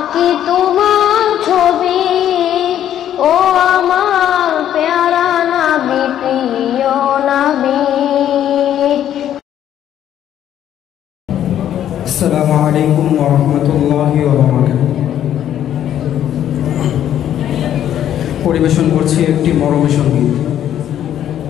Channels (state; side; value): quieter; right; 10.8 dB